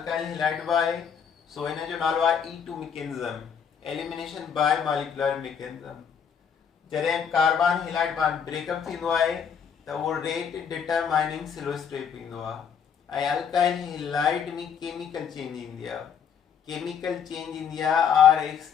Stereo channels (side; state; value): right; quieter; 7.3 dB